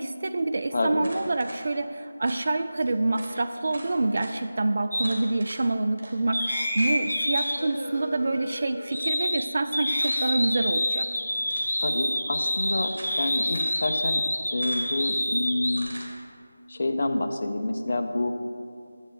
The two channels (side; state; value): both; inverted; correlation -0.95